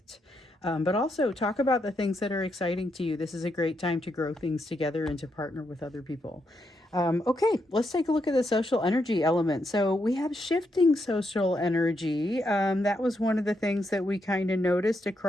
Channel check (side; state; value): both; normal; correlation 0.80